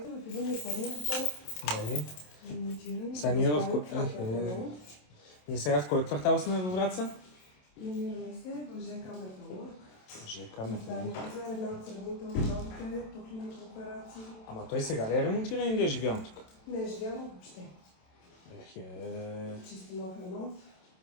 в един изпълнител. Нали? Ремонтиран. Сега ние сега в кой квартал сме във Враца? Намираме се в ЖК Металург. ЖК Металург. Това е една от сравнителните по клиника операции. Ама той сега ли е ремонтиран или е живял тук? Не е живяно въобще. Чисто нов ремонт.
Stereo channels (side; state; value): right; late; 27 ms